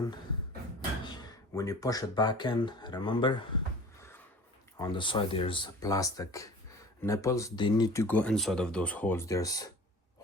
When you push it back in, remember on the side there's plastic nipples. They need to go inside of those holes. There's a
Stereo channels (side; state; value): both; normal; correlation 0.43